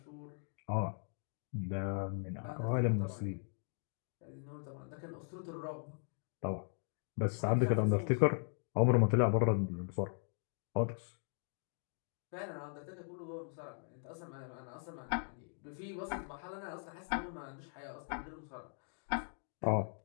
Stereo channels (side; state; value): right; silent; 52 dB below the other